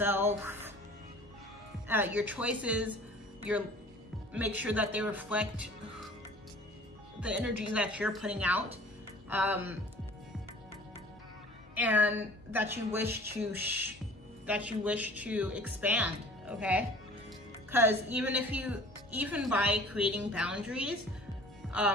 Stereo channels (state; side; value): normal; both; correlation 0.47